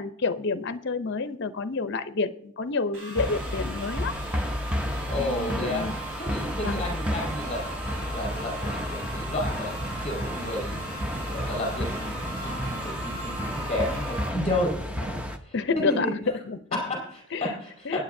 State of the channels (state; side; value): normal; both; correlation 0.35